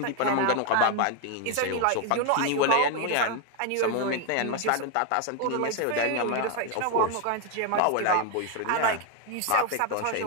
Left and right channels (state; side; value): different; both; correlation 0.01